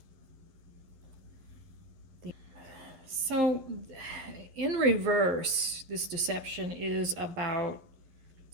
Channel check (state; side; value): late; left; 11 ms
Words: So, in reverse, this deception is about